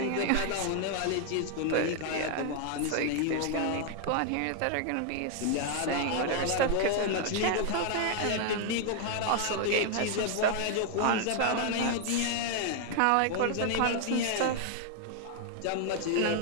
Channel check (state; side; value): different; both; correlation 0.00